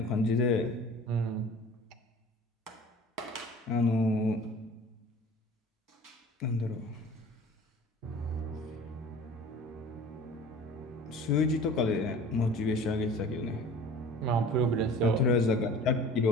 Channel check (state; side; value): normal; both; correlation 0.43